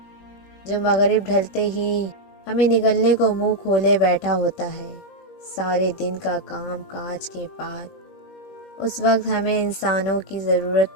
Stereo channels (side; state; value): right; late; 21 ms